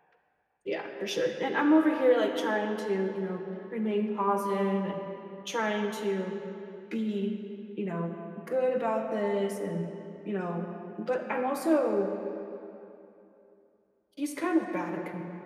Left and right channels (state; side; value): identical; both; correlation 1.00